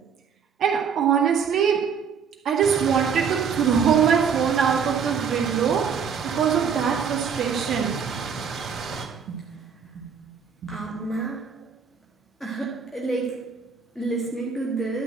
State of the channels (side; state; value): left; quieter; 6.6 dB